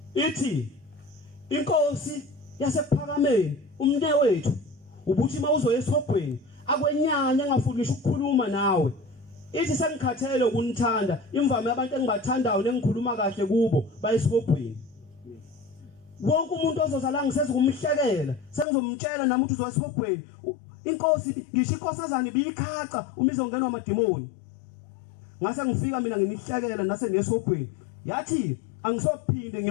Ithi inkosi yasephakameni umne wethu ubuthi mawuzoya esihogweni akwenyanya ngafuni ngisho ukukhuluma nawe. Ithi sengikhathele ukunithanda imvame abantu engibathandayo nengikhuluma kahle kubo bayesihogweni. Wonke umuntu ozozala ngiseze kumhlekela sengizomtshela nami ukuthi uzoya esihogweni. Inkosi ngisho inkosazana ibikhaca uma izongenwa amadimoni. Ngase ngifika mina nginihlekela nase nesihogweni. Yathi angisophinde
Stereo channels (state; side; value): drops out; right; at 18.7 s